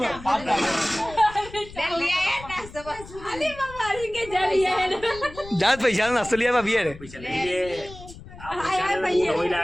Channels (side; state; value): left; noise; rumble, 16 dB below the sound